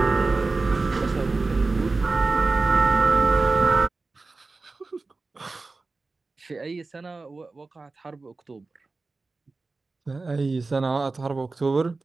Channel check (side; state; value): left; quieter; 3.7 dB